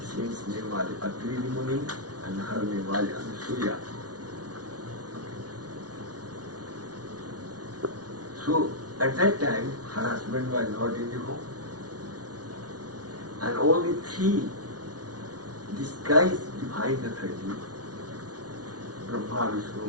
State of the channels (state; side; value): late; left; 0.69 ms